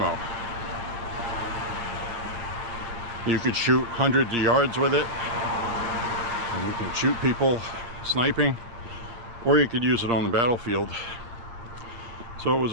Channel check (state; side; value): late; left; 8.5 ms